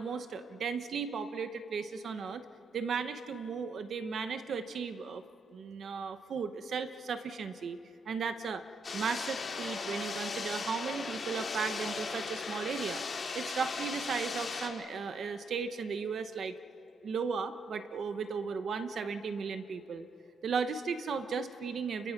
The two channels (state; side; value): quieter; left; 3.4 dB